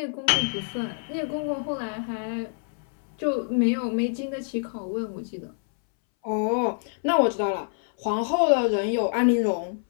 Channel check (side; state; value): right; silent; 61 dB below the other